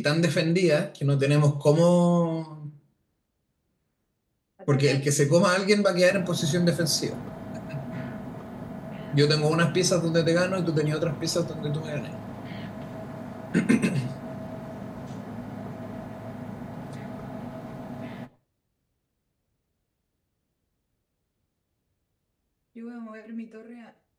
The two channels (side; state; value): both; identical; correlation 1.00